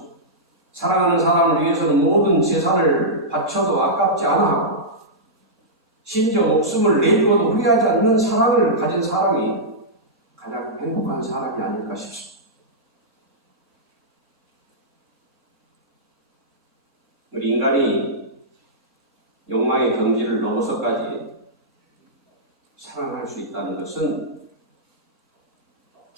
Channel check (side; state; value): both; normal; correlation -0.12